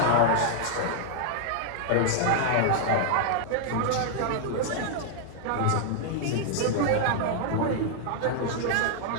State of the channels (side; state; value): both; different; correlation -0.01